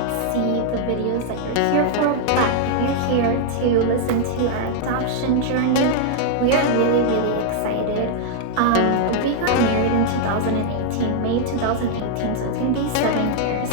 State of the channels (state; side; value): different; both; correlation -0.01